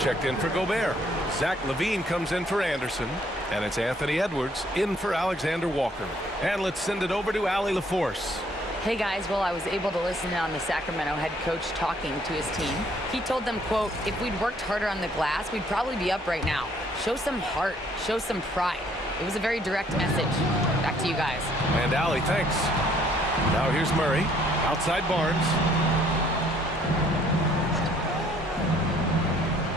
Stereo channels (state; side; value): normal; both; correlation 0.63